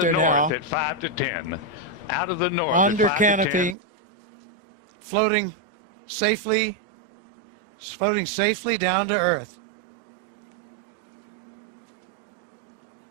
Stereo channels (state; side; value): drops out; left; at 3.8 s